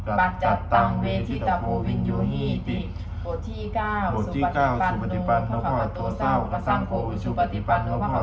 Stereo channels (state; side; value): identical; both; correlation 1.00